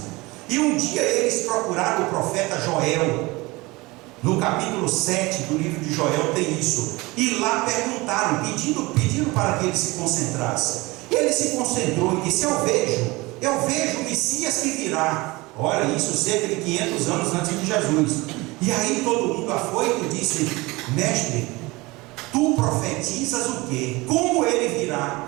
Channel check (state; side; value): quieter; left; 22.7 dB